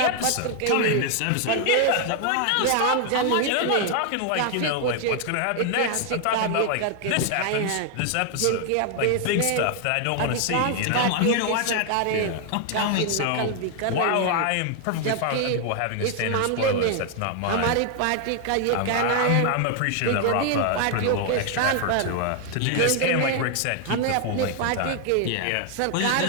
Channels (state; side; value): different; both; correlation 0.00